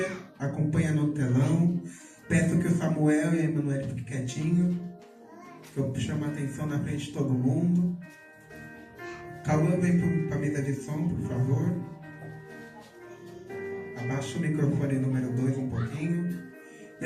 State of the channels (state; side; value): identical; both; correlation 1.00